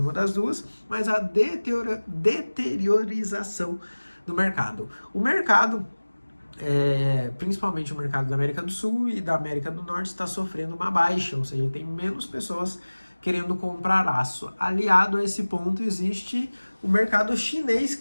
das 2, mas a deteriorização do mercado. O mercado, principalmente o mercado da América do Sul e da América do Norte, está sofrendo uma baixa, ou seja, tem menos pessoas querendo comprar aço. Aliado a esse ponto, existe o mercado chinês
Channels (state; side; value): inverted; both; correlation -1.00